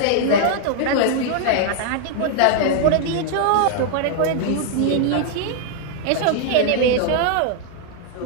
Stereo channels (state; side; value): different; both; correlation 0.00